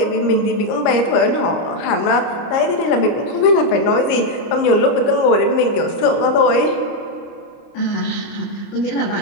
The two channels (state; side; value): late; right; 30 ms